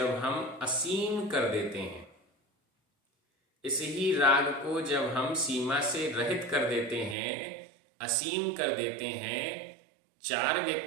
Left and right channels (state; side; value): drops out; left; at 7.2 s